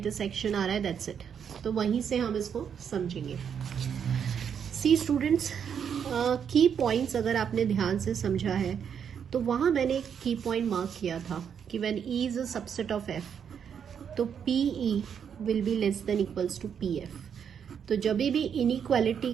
आ रहा है, दैट्स इट। तो वहीं से हम इसको समझेंगे। सी स्टूडेंट्स, की पॉइंट्स अगर आपने ध्यान से समझा है तो वहां मैंने एक की पॉइंट मार्क किया था कि when E is a subset of F, तो P E will be less than equals to P F. तो जब भी इनइक्वालिटी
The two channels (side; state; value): left; quieter; 7.7 dB